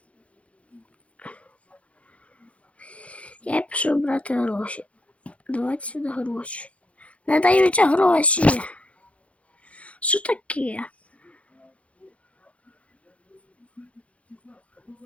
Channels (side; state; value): right; late; 0.063 ms